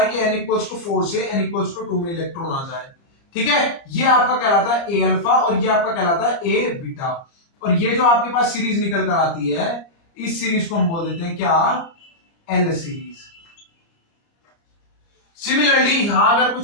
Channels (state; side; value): late; right; 30 ms